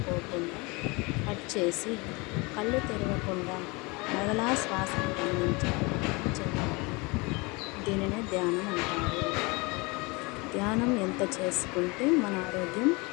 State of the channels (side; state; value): right; quieter; 26.8 dB